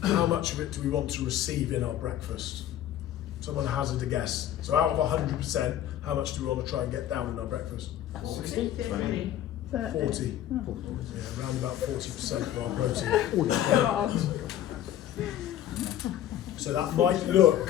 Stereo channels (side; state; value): right; quieter; 11.8 dB